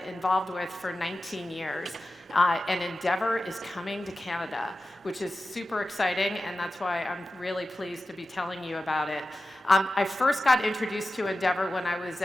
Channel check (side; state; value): both; normal; correlation 0.94